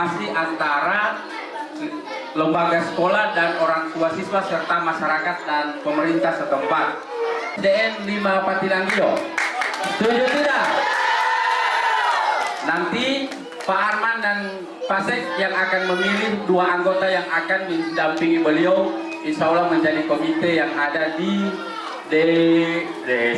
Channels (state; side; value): identical; both; correlation 1.00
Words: antara lembaga sekolah dan orang tua siswa serta masyarakat dan pemerintah setempat. SDN 5 Patilangio, setuju tidak? Nanti Pak Arman dan Pak Sek yang akan memilih 2 anggota yang akan mendampingi beliau, insya Allah menjadi komite yang ada di